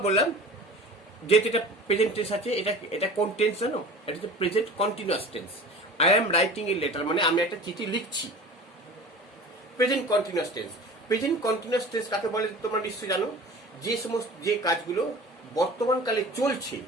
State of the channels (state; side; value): normal; both; correlation 0.39